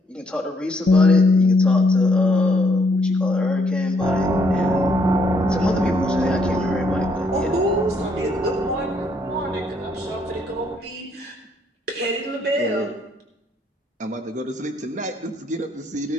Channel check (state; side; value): normal; both; correlation 0.70